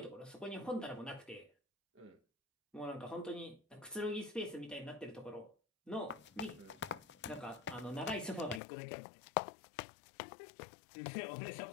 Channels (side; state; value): right; drops out; at 8.6 s